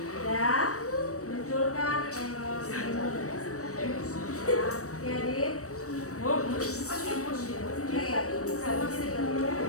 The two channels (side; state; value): right; late; 0.65 ms